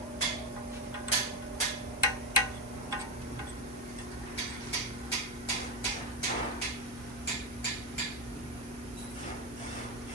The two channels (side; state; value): both; normal; correlation 0.12